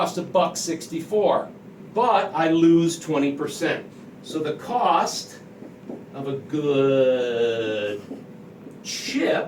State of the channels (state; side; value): identical; both; correlation 1.00